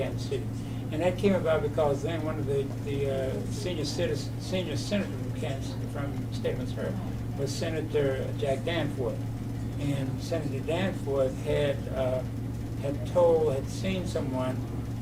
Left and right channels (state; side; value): identical; both; correlation 1.00